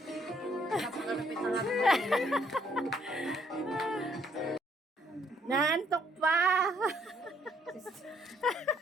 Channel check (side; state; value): both; normal; correlation 0.67